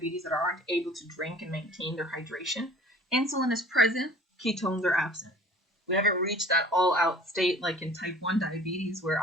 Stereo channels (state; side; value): normal; both; correlation 0.48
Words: that aren't able to drink and maintain their hydration. Insulin is present, ketones are absent. We haven't reached that all-out state like in type 1 diabetes where